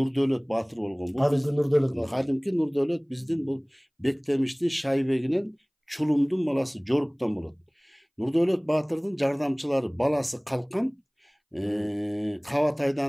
Баатыр болгон. Кадимки Нурдөөлөт биздин бул Бектемиштин Шайбегинен Чулумдун баласы Жоруптан болот. Нурдөөлөт Баатырдын жардамчылары баласы Калкан,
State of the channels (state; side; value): identical; both; correlation 1.00